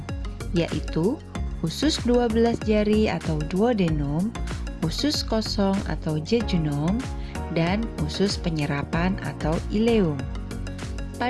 yaitu usus 12 jari atau duodenum, usus kosong atau jejunum, dan usus penyerapan atau ileum.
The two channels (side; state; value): both; identical; correlation 1.00